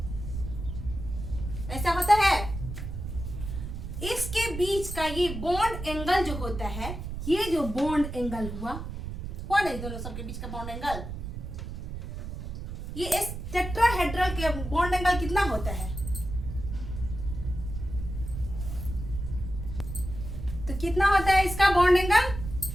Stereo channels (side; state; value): right; noise; rumble, 7 dB below the sound